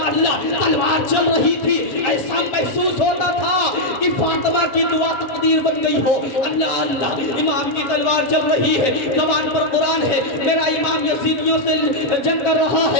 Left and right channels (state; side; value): late; right; 7.8 ms